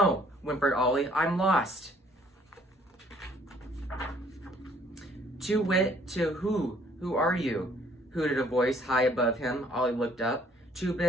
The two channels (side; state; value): both; normal; correlation 0.61